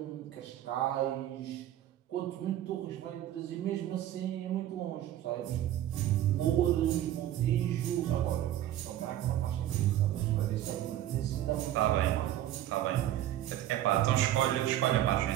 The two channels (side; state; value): left; quieter; 12.7 dB